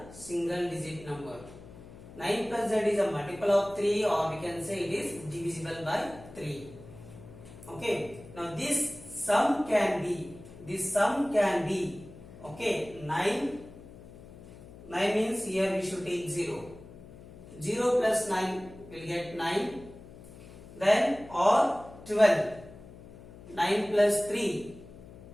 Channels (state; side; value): noise; left; hum, 18 dB below the sound